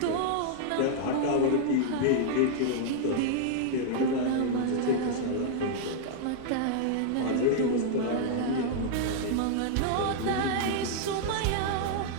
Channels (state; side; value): different; both; correlation -0.01